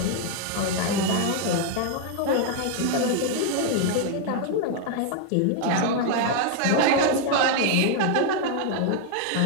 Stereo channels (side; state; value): both; different; correlation 0.01